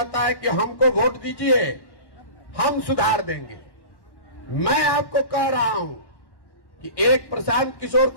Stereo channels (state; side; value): late; right; 1.1 ms